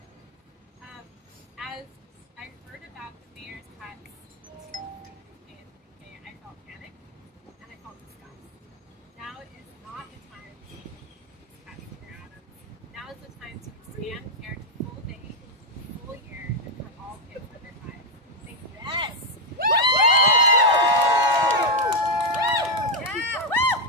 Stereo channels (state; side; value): normal; both; correlation 0.02